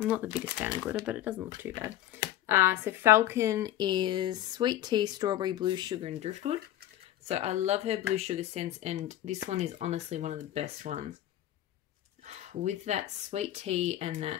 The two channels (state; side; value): quieter; right; 13.2 dB